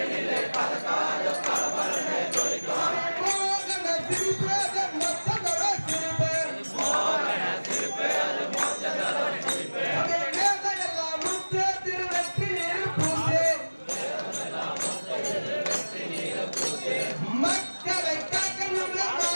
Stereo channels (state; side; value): inverted; both; correlation -1.00